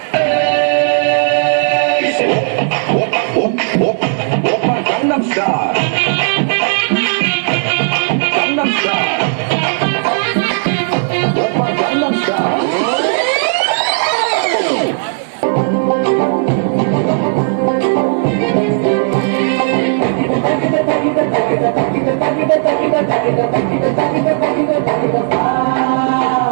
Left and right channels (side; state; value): left; silent; digital silence